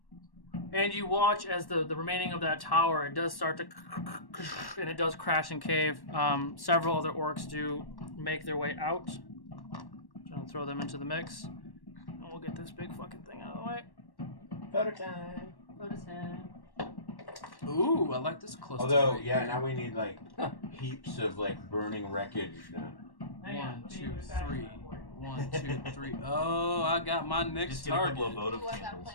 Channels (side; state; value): right; late; 1.1 ms